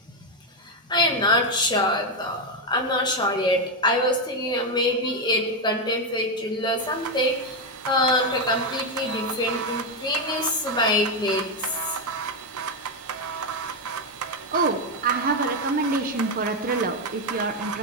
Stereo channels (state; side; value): normal; both; correlation 0.06